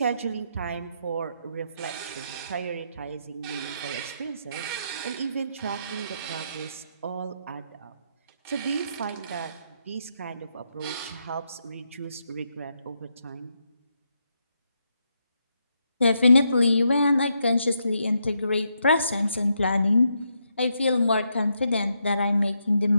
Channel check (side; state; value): both; inverted; correlation -0.80